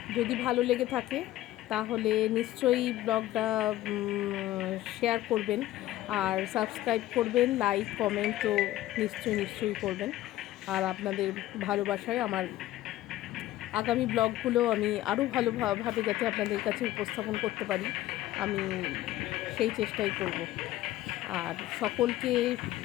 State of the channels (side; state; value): right; quieter; 15.0 dB